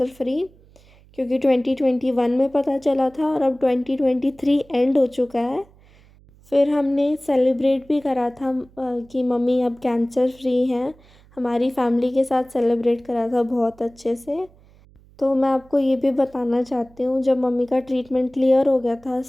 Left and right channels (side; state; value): right; noise; hum, 27 dB below the sound